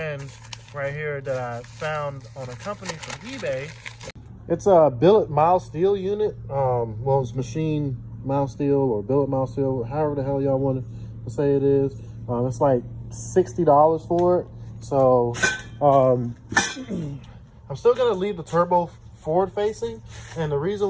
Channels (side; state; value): both; identical; correlation 1.00